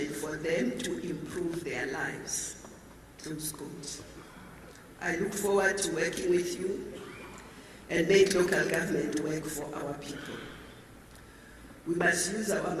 for them to improve their lives." Close quote. I look forward to working with you and make local government work for our people. We must use our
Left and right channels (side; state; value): both; identical; correlation 1.00